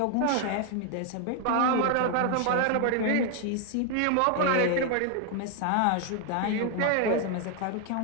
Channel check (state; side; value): different; both; correlation 0.01